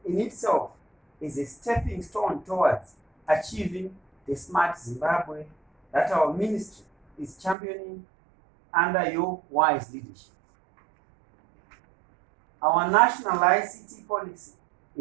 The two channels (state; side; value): drops out; left; at 7.6 s